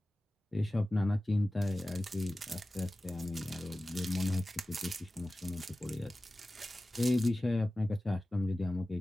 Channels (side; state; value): both; normal; correlation 0.96